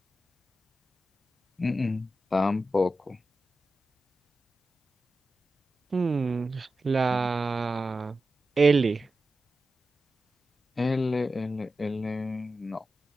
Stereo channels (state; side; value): normal; both; correlation 0.92